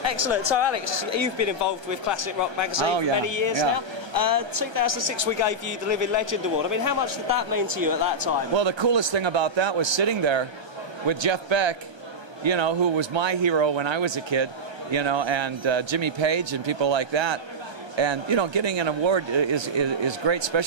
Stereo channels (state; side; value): late; left; 1.3 ms